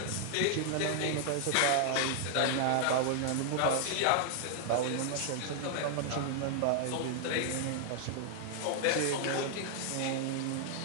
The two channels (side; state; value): both; different; correlation 0.00